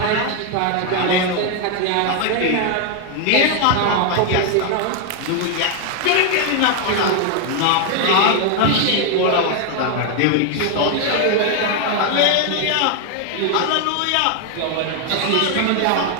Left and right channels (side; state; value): both; different; correlation 0.01